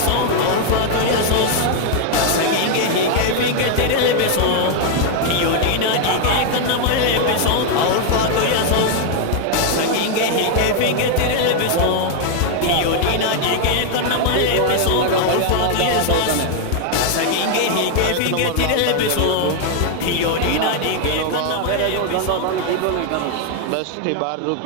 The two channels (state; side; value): different; both; correlation 0.00